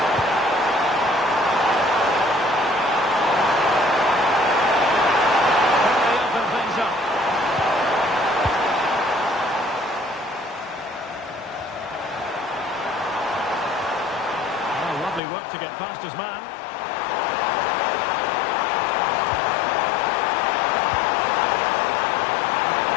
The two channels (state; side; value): drops out; right; at 15.2 s